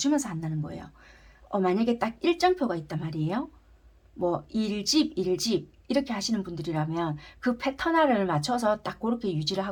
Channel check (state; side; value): identical; both; correlation 1.00